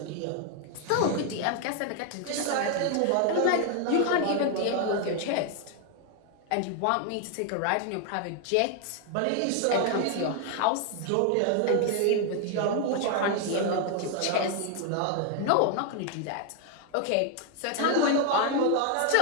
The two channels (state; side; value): different; both; correlation 0.01